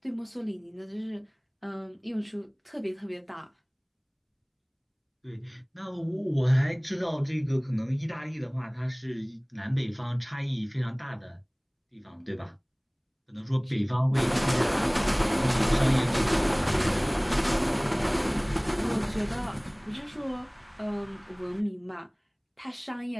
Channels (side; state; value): both; identical; correlation 1.00